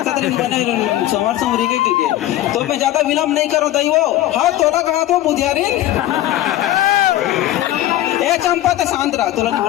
तरी बने समर समरी के तो मैं ज्यादा विलंब नहीं करो दई वो। हाँ तोला कहा तो बुधियारिन ए चंपा तो शांत रहा, तोला नहीं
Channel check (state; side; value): quieter; right; 14.0 dB